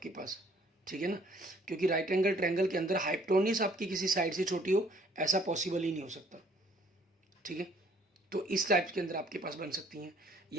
पास, ठीक है ना, क्योंकि राइट एंगल ट्रायंगल के अंदर हाइपोटेन्यूज आपकी किसी साइड से छोटी हो, ऐसा पॉसिबल ही नहीं हो सकता, ठीक है। तो इस टाइप के अंदर आपके पास बन सकती हैं।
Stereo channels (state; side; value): normal; both; correlation 0.60